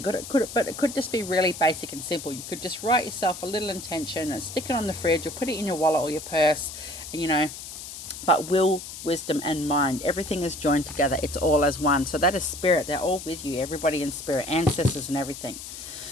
But it could just be really basic and simple. You could just write yourself a little intention and stick it on the fridge or put it in your wallet or your purse, and, you know, but will, wisdom, and mind, everything is joined together. It's all as one. So that is Spirit. They're all with you, everybody in Spirit, ancestors and everything.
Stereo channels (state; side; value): noise; left; hiss, 11 dB below the sound